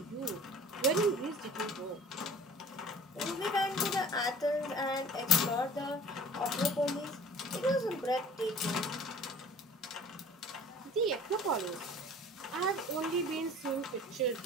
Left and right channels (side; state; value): both; normal; correlation 0.46